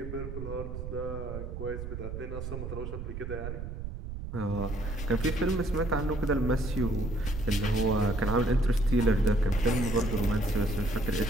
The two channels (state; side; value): noise; right; rumble, 7 dB below the sound